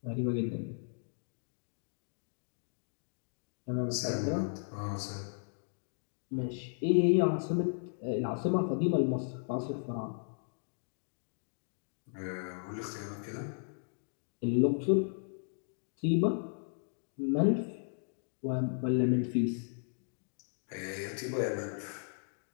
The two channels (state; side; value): silent; right; digital silence